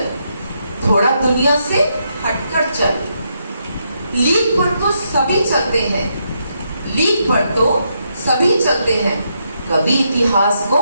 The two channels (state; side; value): inverted; both; correlation -0.79